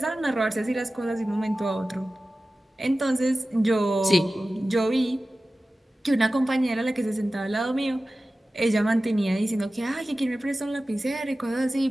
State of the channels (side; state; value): both; normal; correlation 0.96